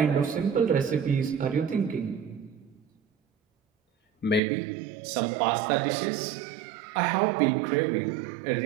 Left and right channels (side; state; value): left; drops out; at 4.4 s